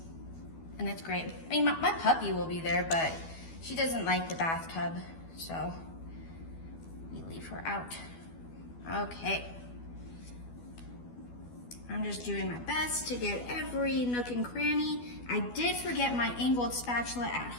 And it's great. I mean, my puppy will be there, but she doesn't like the bathtub, so we leave her out. Okay. I'm just doing my best to get every nook and cranny. I did forget my angled spatula at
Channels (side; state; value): right; late; 12 ms